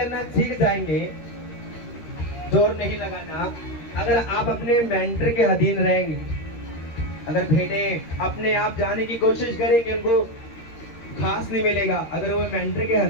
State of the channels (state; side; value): late; right; 13 ms